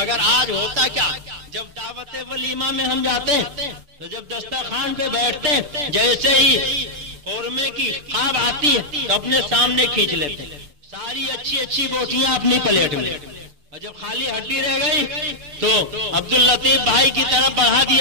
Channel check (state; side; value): late; left; 6.9 ms